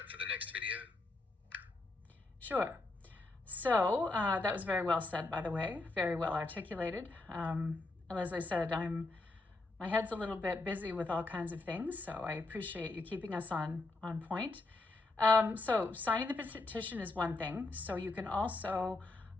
for the next video? Sure. So that was very well said, by the way, very well articulated. As I said, my head's a little bit busy with all kinds of things, so I appreciate you keeping us on point. So signing the petition is one thing. So you can also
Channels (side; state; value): right; quieter; 3.2 dB